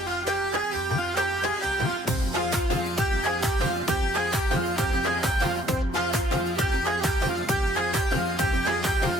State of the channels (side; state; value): both; normal; correlation 0.62